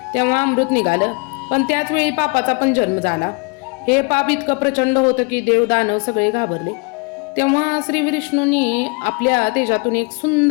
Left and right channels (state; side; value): quieter; right; 32.1 dB